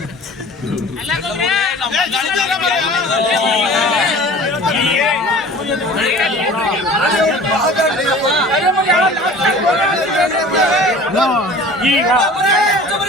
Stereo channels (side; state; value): both; normal; correlation 0.43